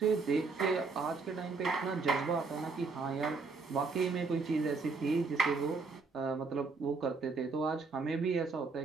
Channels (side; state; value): left; quieter; 4.3 dB